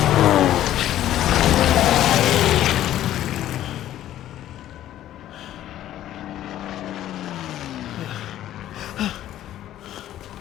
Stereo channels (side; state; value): right; quieter; 12.7 dB